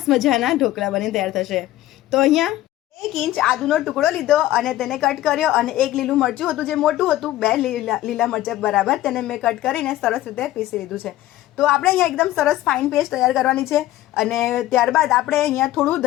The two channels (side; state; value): right; quieter; 14.8 dB